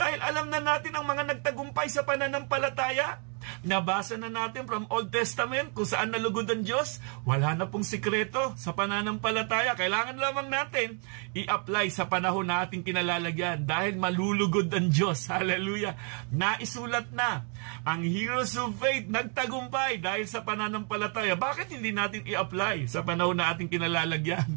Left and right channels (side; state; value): left; quieter; 39.4 dB